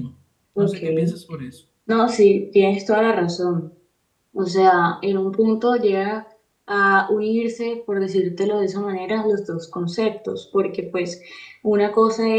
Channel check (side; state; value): both; identical; correlation 1.00